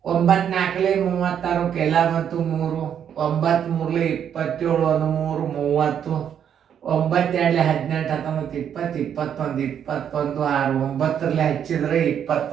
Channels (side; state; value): left; quieter; 8.8 dB